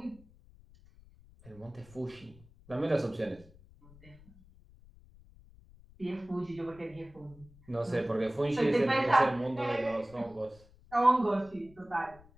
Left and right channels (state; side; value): noise; left; rumble, 24 dB below the sound